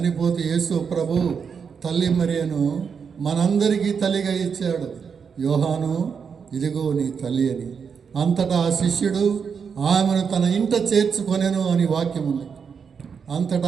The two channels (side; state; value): left; quieter; 6.3 dB